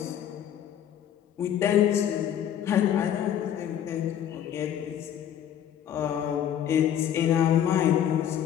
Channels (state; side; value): quieter; right; 9.9 dB